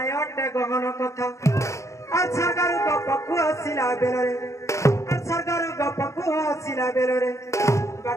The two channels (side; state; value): right; late; 0.14 ms